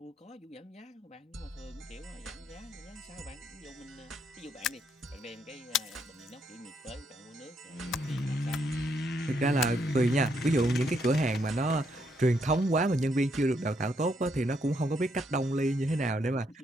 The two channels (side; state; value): both; normal; correlation 0.75